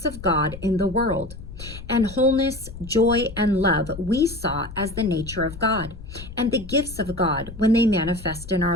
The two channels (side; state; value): left; noise; rumble, 13 dB below the sound